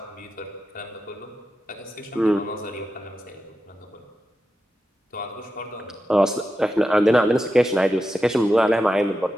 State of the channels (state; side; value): normal; both; correlation 0.89